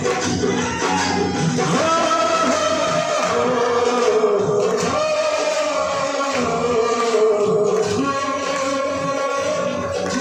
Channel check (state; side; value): identical; both; correlation 1.00